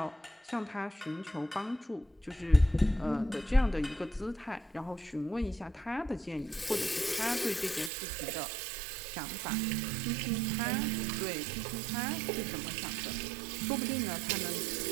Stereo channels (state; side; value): drops out; left; at 7.9 s